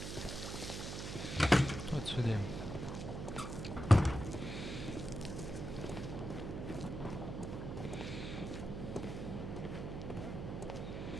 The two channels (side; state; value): right; noise; hum, 5 dB below the sound